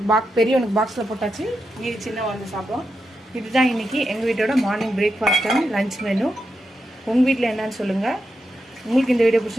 பெரியவனுக்கு பாக்ஸில் போட்டாச்சு. மீதி சின்ன வந்து சாப்பிடும். இதுதான் இன்றைக்கி எங்கள் வீட்டோட morning breakfast and lunch menu. உங்கள் வீட்டில் என்னன்னு சொல்லுங்கள். உங்களுக்கு இந்த வீடியோ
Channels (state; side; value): normal; both; correlation 0.86